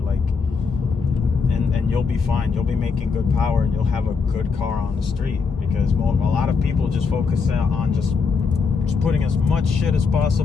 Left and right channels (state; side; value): quieter; right; 5.1 dB